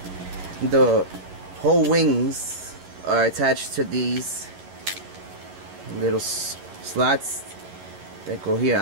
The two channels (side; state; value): left; late; 11 ms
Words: the whole wings are attached to these little slots that go here,